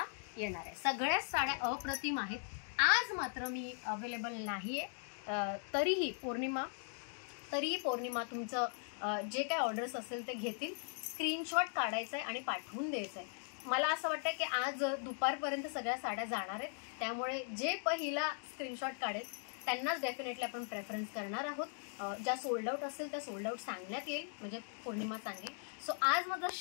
येणार आहे. सगळ्याच साड्या अप्रतिम आहेत. आज मात्र मी अवेलेबल नाही आहे. तरीही पौर्णिमा तुमचं जे काय ऑर्डर्स असेल ते घेतील. स्क्रीनशॉट काढायचं आहे आणि पाठवून द्यायचं आहे. मला असं वाटतं की आज दुपारपर्यंत सगळ्या साड्या जाणार आहेत. त्यामुळे जे पहिला स्क्रीनशॉट काढेल त्यांनाच डेफिनेटली आपण प्रेफरन्स करणार आहोत. ज्या सोल्ड आउट असेल त्या सोल्ड आउट सांगण्यात येईल, म्हणजे पौर्णिमा सांगेल. सो आज माझा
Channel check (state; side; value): silent; right; 52 dB below the other